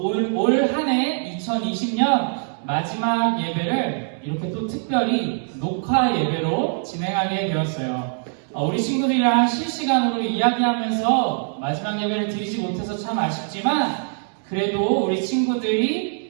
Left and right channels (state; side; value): silent; left; 64 dB below the other